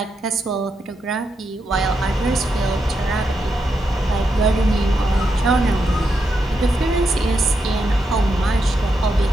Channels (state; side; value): normal; both; correlation 0.83